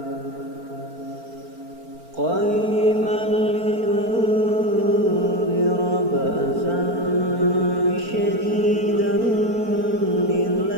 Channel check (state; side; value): late; left; 4.4 ms